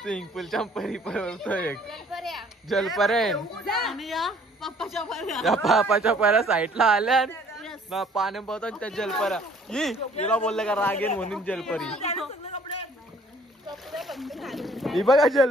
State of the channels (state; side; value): normal; both; correlation 0.58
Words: स्विमिंग पूलच्या परी पळतो एक जलपरेन. त्या पापाच्या पऱ्या साईडला आल्या ना पाणी पळतो त्या जलपऱ्या. हिला बोलले का रागेन म्हणून जलपरी. ही बघा